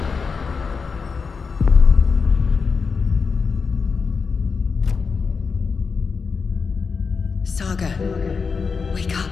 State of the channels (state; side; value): quieter; right; 5.2 dB